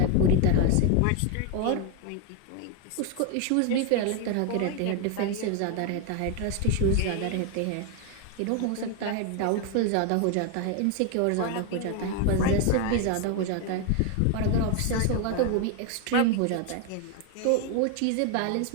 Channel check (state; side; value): different; both; correlation 0.01